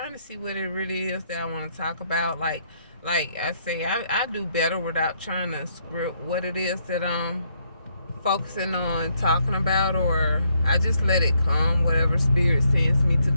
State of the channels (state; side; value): inverted; both; correlation -0.73